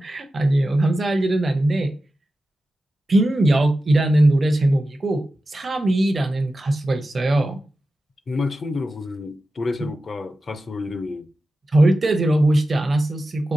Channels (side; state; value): both; normal; correlation 0.93